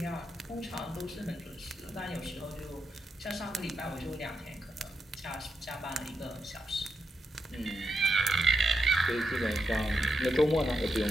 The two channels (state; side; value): normal; both; correlation 0.84